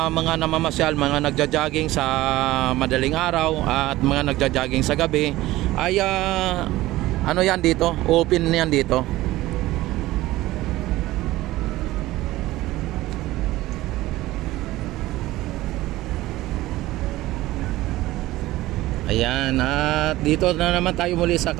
mga namamasyal, mga nagja-jogging sa madaling araw at mga nagja-jogging sa gabi ay yan dito, open yan dito. Ayan, at dito na naman tayo muli sa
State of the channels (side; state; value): left; quieter; 17.2 dB